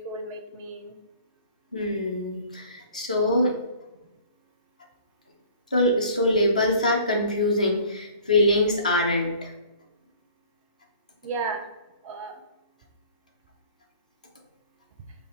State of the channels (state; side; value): inverted; both; correlation -0.50